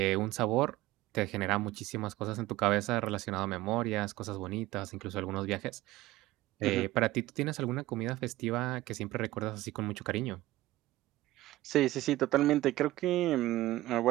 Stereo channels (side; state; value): left; quieter; 17.0 dB